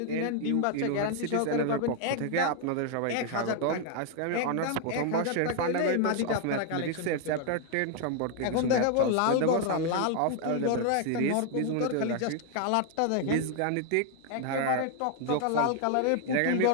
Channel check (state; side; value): different; both; correlation 0.00